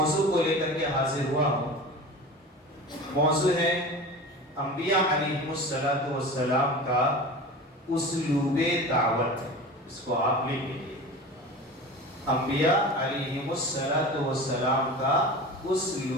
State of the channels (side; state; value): both; normal; correlation 0.33